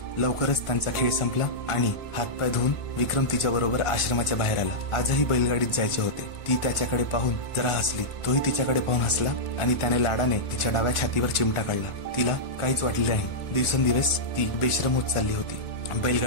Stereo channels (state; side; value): late; right; 1.4 ms